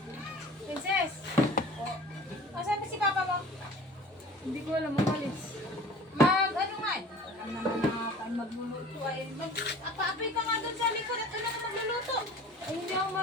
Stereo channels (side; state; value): both; normal; correlation 0.43